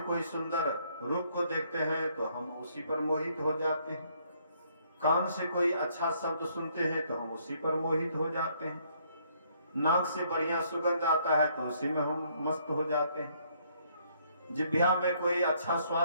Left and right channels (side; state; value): both; inverted; correlation -0.68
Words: कोई सुंदर रूप को देखते हैं तो हम उसी पर मोहित हो जाते हैं, कान से कोई अच्छा शब्द सुनते हैं तो हम उसी पर मोहित हो जाते हैं, नाक से बढ़िया सुगंध आता है तो उसी में हम मस्त हो जाते हैं, जिह्वा में कोई अच्छा